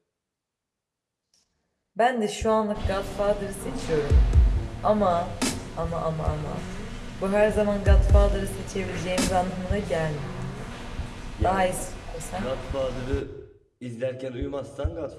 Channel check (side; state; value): both; identical; correlation 1.00